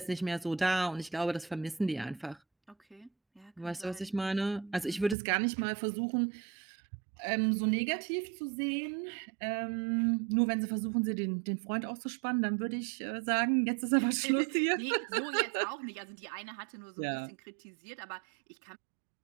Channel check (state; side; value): drops out; left; at 5.2 s